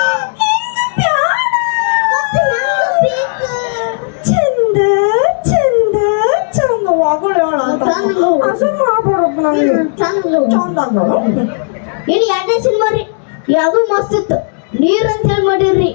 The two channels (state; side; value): silent; right; digital silence